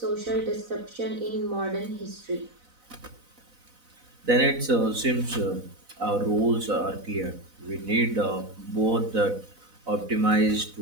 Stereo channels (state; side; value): late; left; 4.0 ms